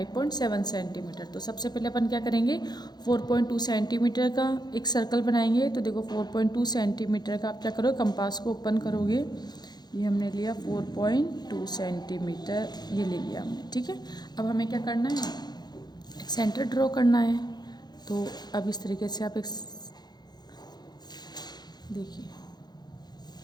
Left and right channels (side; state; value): right; late; 0.20 ms